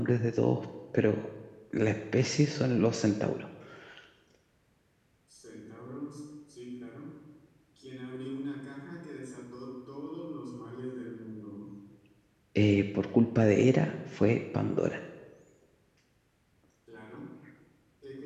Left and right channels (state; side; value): identical; both; correlation 1.00